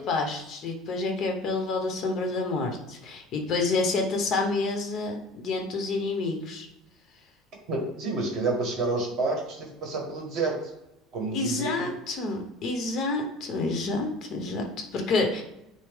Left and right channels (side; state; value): both; normal; correlation 0.41